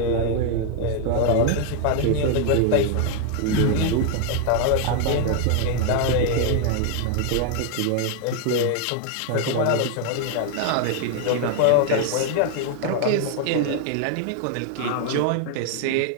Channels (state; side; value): different; both; correlation 0.00